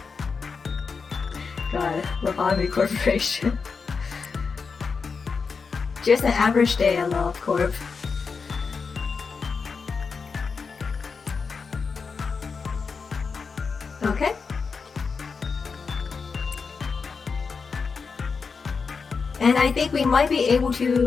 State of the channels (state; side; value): quieter; right; 5.2 dB